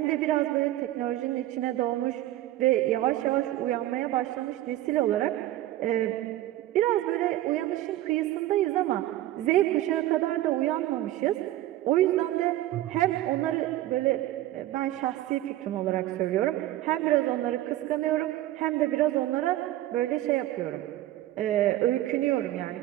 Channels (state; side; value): quieter; left; 14.8 dB